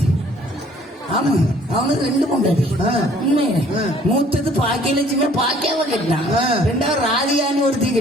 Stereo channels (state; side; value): normal; both; correlation 0.57